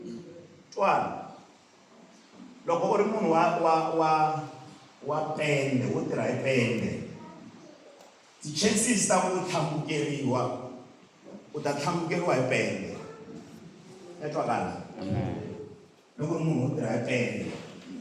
Twala. Loko u ri munhu wa pende wo tirha hi pende, ti-chances ta ku tlhambukeriwa u ta tlhambukeriwa hi pende. Ya twakala? Loko u ri munhu wo tirha hi pende,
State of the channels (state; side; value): identical; both; correlation 1.00